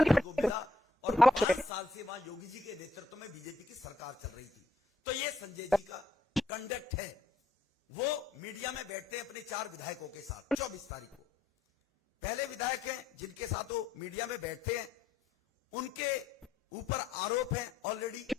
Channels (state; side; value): quieter; right; 3.1 dB